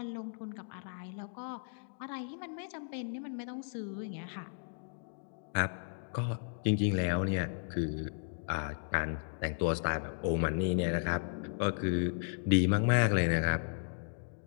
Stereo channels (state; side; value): silent; right; digital silence